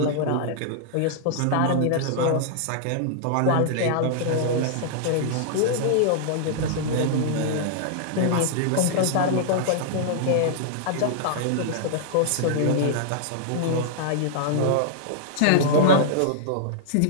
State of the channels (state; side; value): different; both; correlation -0.01